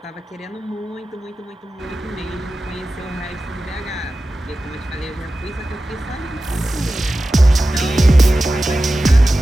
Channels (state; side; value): normal; both; correlation 0.94